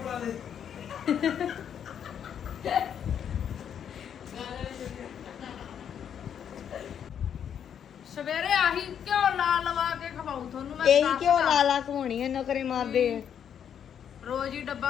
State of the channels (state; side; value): quieter; right; 8.6 dB